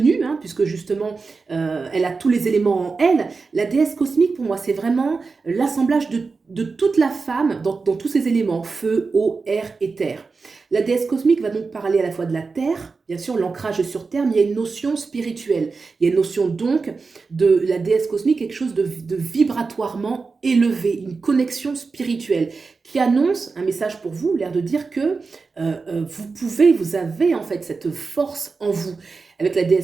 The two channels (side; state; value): left; quieter; 4.4 dB